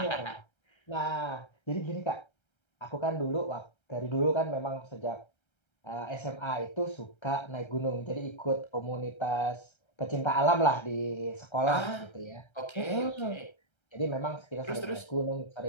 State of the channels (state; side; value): late; right; 1.3 ms